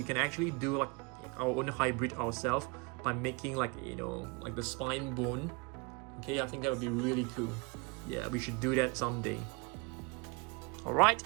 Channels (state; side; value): quieter; left; 29.8 dB